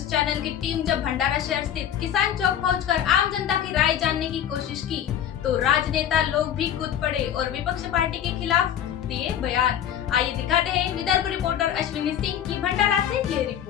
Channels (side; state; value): right; quieter; 9.9 dB